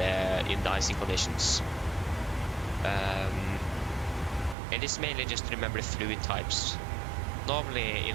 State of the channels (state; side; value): drops out; left; at 4.5 s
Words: the icing conditions. It is mainly just to remember the fluid types. Normally